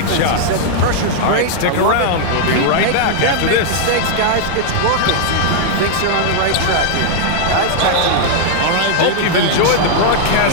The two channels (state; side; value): different; both; correlation -0.01